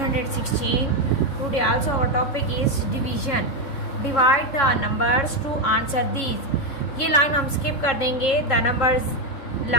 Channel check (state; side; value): late; right; 3.7 ms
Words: Today also our topic is division. Divide the numbers to answer these. ये line हम skip कर देंगे. The numbers